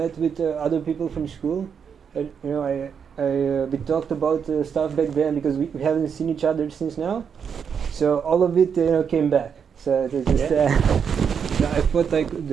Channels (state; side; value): quieter; left; 7.0 dB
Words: with other people from school. We talked about stuff back then because we haven't seen each other since now. So all of it, came back. So it was just, I thought I could